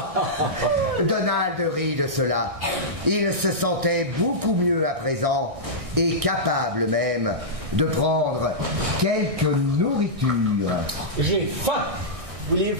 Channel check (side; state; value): left; late; 1.6 ms